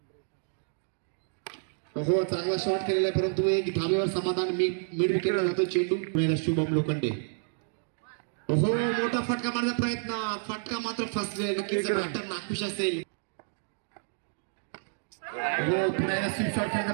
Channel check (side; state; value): left; silent; digital silence